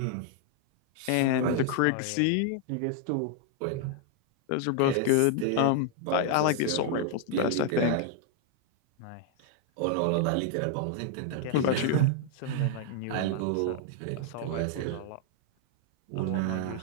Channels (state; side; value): different; both; correlation 0.00